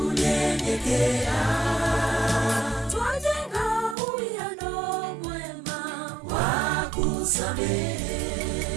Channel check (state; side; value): drops out; left; at 4.0 s